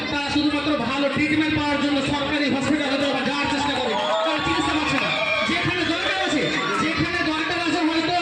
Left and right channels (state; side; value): identical; both; correlation 1.00